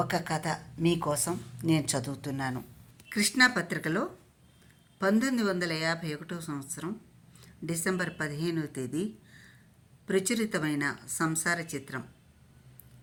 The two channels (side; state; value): both; identical; correlation 1.00